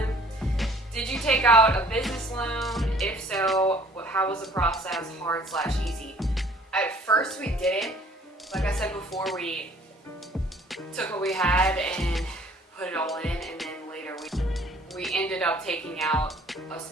Did you take out a business loan? If so, how was the process, hard/easy? At first we didn't. Like I said before, we took what we had and put it all in, and then later we ended up taking out a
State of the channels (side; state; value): both; normal; correlation 0.55